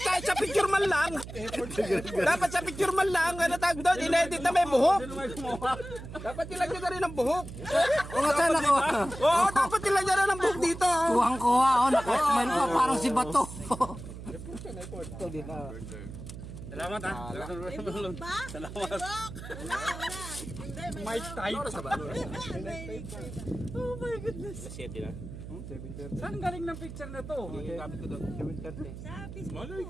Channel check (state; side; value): noise; right; hum, 11 dB below the sound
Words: sa picture man lang. Dapat sa picture man lang. Ano tag doon? Inedit na may buhok. Dapat nilagyan na rin ng buhok. O nga sana ko. Oo, dapat nilagyan na ng buhok dito. Kuhang-kuha ako, nakasmile pa parang si Bato. Salamat ha. Ba? Salamat. Wala. Hindi, may Mike type. Oh my goodness. Siyete na. Saan galing ng picture na to? Gamit ko doon. Sa Facebook. Malay